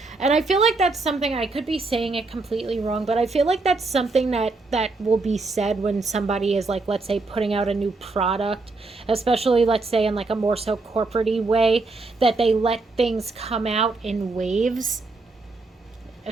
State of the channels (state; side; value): quieter; left; 3.5 dB